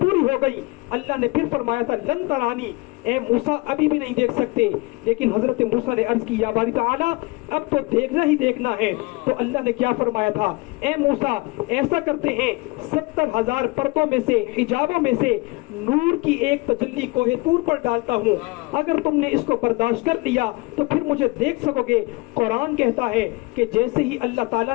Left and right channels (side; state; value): right; quieter; 24.4 dB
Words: ہو گئی. اللہ نے پھر فرمایا تھا لن ترانی، اے موسیٰ ابھی بھی نہیں دیکھ سکتے. لیکن حضرت موسیٰ نے عرض کی یا باری تعالیٰ اب تو دیکھنا ہی دیکھنا ہے. تو اللہ نے کیا فرمایا تھا؟ اے موسیٰ ایسا کرتے ہیں 70,000 پردوں میں سے، حجابوں میں سے نور کی ایک تجلی کوہ طور پر ڈالتا ہوں. اگر تم نے اس کو برداشت کر لیا تو پھر مجھے دیکھ سکو گے. قرآن کہتا ہے کہ جیسے ہی اللہ